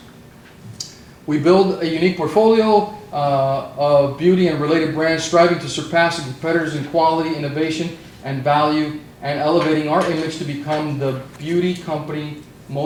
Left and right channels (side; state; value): both; identical; correlation 1.00